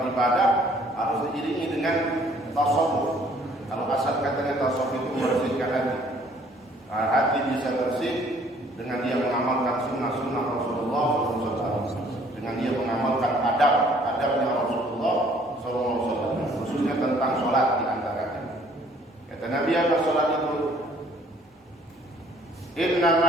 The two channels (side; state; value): both; normal; correlation 0.59